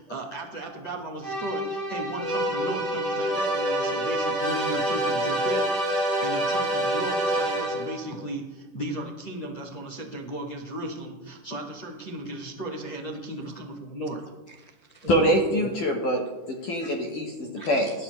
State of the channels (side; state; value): right; late; 10 ms